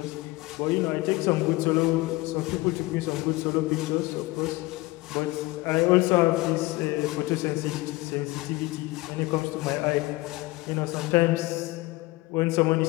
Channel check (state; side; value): quieter; right; 21.3 dB